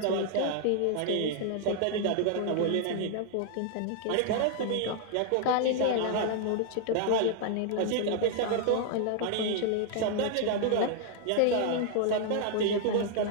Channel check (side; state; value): both; different; correlation -0.01